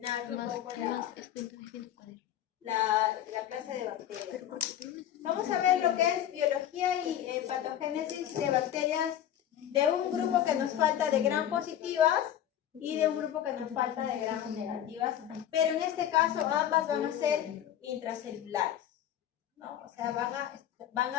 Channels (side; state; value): right; quieter; 10.9 dB